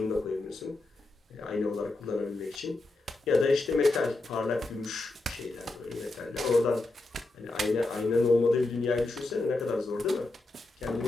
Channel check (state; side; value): quieter; right; 3.0 dB